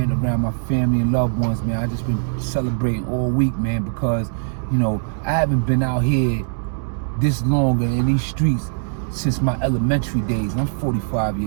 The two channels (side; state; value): left; silent; digital silence